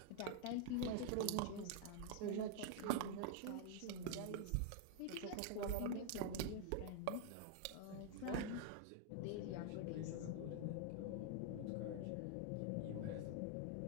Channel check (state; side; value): different; both; correlation 0.00